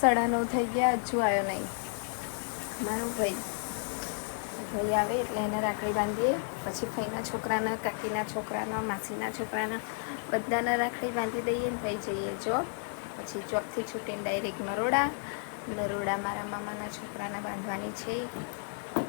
9:30 થઈ ગયા, હજુ આવ્યો નહીં મારો ભાઈ આવે એટલે એને રાખડી બાંધીએ. પછી ફઈના છોકરાના, કાકીના છોકરાના, માસીના છોકરાના બધાને રાખડી બાંધી દઈએ ને થઈ જઈએ જોબ. પછી જોબથી છૂટીને ડાયરેક્ટ નરોડા મારા મામાના છોકરાના બાંધવાની છે.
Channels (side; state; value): right; silent; 56 dB below the other